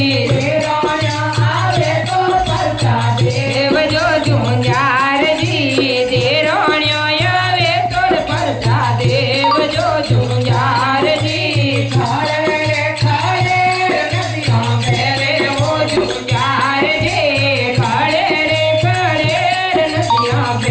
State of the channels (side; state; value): both; identical; correlation 1.00